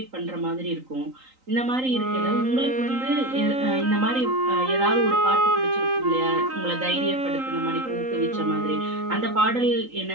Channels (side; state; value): left; late; 3.9 ms